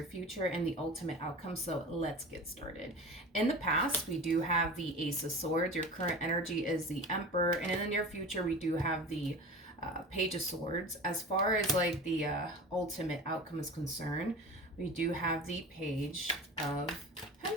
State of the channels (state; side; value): normal; both; correlation 0.33